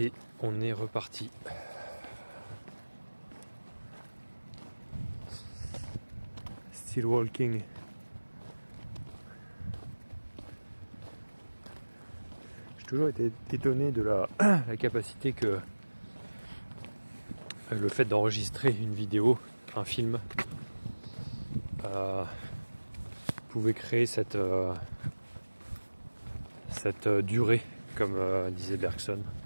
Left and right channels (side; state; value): both; inverted; correlation -1.00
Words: on est reparti. Still walking. J'ai toujours été étonné de la capacité que le fait d'enregistrer une vidéo, un film, pouvait créer cette durée, comme disait Bergson.